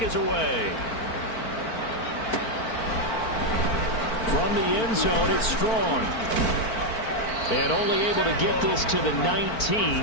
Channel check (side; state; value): right; late; 4.5 ms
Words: is away. From the end zone, it's Strong. And only able to get this to the